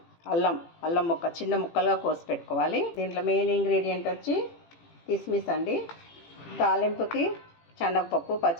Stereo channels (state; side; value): late; right; 18 ms